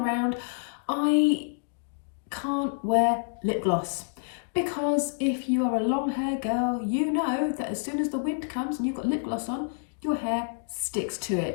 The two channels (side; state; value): right; silent; digital silence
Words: I can't wear lip gloss. Because if you are a long hair girl, you know that as soon as the wind comes and you've got lip gloss on, your hair sticks to